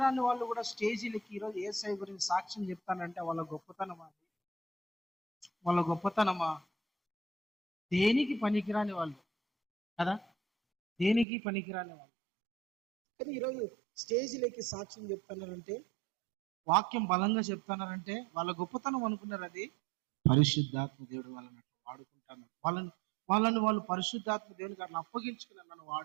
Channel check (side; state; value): left; drops out; at 11.2 s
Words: వాళ్ళు కూడా స్టేజీలకి ఈరోజు యేసయ్య గురించి సాక్ష్యం చెప్తానంటే వాళ్ళ గొప్పతనమా? దేనికి పనికిరాని వాళ్ళు కదా, దేనికి పనికిరాని వాళ్ళు. కానీ ఈరోజు స్టేజీలకి సాక్ష్యం చెప్తున్నారంటే, వాక్యం బలంగా చెప్తున్నారంటే వాళ్ళ గొప్పతనం అనుకున్నారు. అది పరిశుద్ధాత్మ దేవుడు వాళ్ళని అట్లా వాడుకుంటాను. వాళ్ళు పరిశుద్ధాత్మ దేవునికి అట్లా అప్పగించుకున్నారు. నన్ను